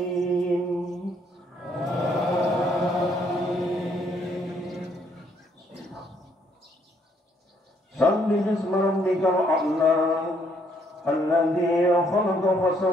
Sabbi bismi rabbikal a'la, alladzi khalaqa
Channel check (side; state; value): both; normal; correlation 0.68